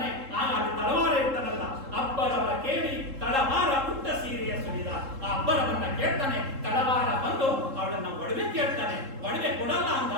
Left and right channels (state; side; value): late; left; 3.7 ms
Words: ಆಗ ಅಲ್ಲಿ ತಳವಾರ ಇರ್ತಾನಲ್ಲ, ಅಬ್ಬರವ ಕೇಳಿ ತಳವಾರ ಪುಟ್ಟ ಸೀರೆಯ ಸುರಿದ. ಆ ಅಬ್ಬರವನ್ನ ಕೇಳ್ತಾನೆ, ತಳವಾರ ಬಂದು ಅವಳನ್ನ ಒಡವೆ ಕೇಳ್ತಾನೆ. ಒಡವೆ ಕೊಡಲ್ಲ